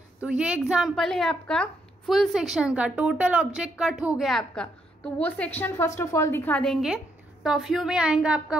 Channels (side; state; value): both; normal; correlation 0.76